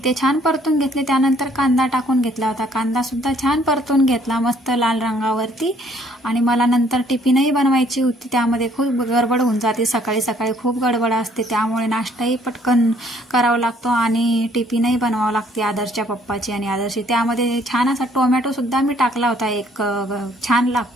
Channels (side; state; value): both; normal; correlation 0.63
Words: ते छान परतून घेतले। त्यानंतर कांदा टाकून घेतला होता, कांदा सुद्धा छान परतून घेतला मस्त लाल रंगावरती। आणि मला नंतर टिफिनही बनवायची होती, त्यामध्ये खूप गडबड होऊन जाते, सकाळी सकाळी खूप गडबड असते, त्यामुळे नाश्ताही पटकन करावा लागतो आणि टिफिनही बनवावं लागते आदर्शच्या पप्पाची आणि आदर्शची। त्यामध्ये छान असा टोमॅटो सुद्धा मी टाकला होता, एक छान